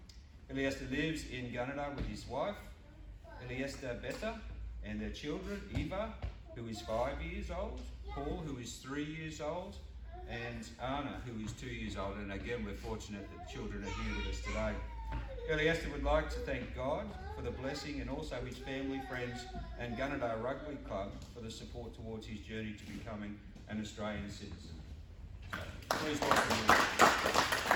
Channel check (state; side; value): identical; both; correlation 1.00